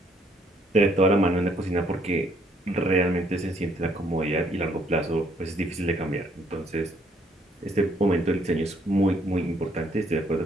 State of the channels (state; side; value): normal; both; correlation 0.67